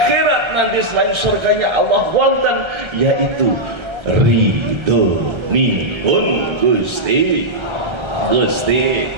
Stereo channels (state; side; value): late; left; 1.4 ms